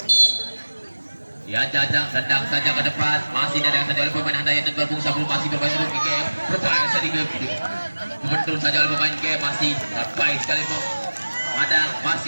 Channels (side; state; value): both; inverted; correlation -1.00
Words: Ya, jajang tendang saja ke depan, masih tendang saja oleh pemain handai dan berbung sebelum masih bermain dulu game. Berupaya sedikit betul saja oleh pemain game masih baik sekali ada